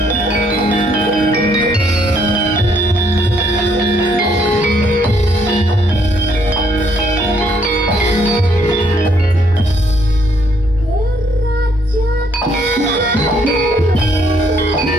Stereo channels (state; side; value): normal; both; correlation 0.69